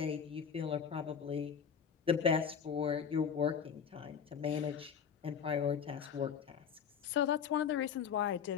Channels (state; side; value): quieter; right; 7.3 dB